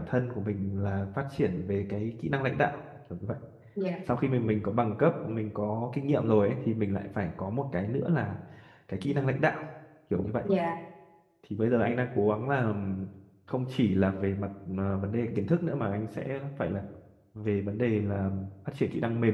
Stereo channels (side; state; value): both; identical; correlation 1.00